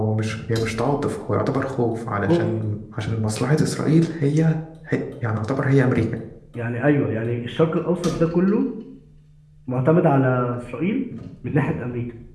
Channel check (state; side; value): identical; both; correlation 1.00